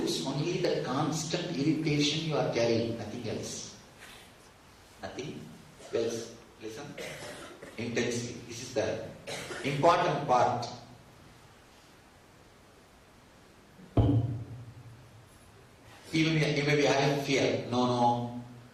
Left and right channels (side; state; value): both; identical; correlation 1.00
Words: only the constant irritation you are carrying, nothing else. Nothing else. Listen intensely. This is the important part. You may be having fear. No.